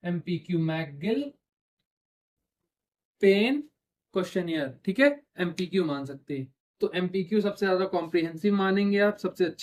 एमपीक्यू, मैकगिल पेन क्वेश्चनियर। ठीक है, एमपीक्यू मान सकते हैं। तो एमपीक्यू सबसे ज्यादा कॉम्प्रिहेंसिव मानेंगे आप, सबसे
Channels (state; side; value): identical; both; correlation 1.00